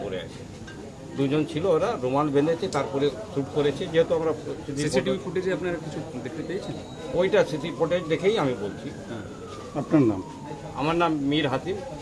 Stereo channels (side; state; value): both; identical; correlation 1.00